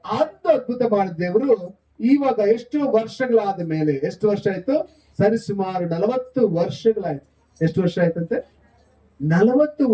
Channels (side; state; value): both; identical; correlation 1.00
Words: ಅದು ಅದ್ಭುತ ಮಾಡಿದ ದೇವರು ಇವಾಗ ಎಷ್ಟು ವರ್ಷಗಳಾದ ಮೇಲೆ, ಎಷ್ಟು ವರ್ಷ ಆಯ್ತು? ಸರಿಸುಮಾರು 40 ವರ್ಷಗಳಾಯ್ತು. ಎಷ್ಟು ವರ್ಷ ಆಯ್ತಂತೆ? 40